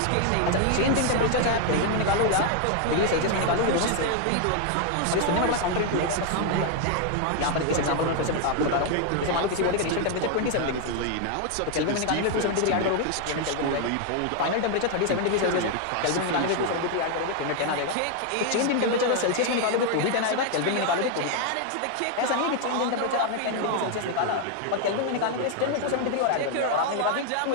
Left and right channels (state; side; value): different; both; correlation 0.00